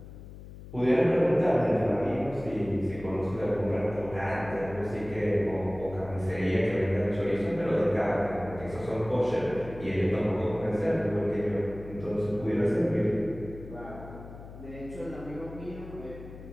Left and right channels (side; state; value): left; noise; hum, 15 dB below the sound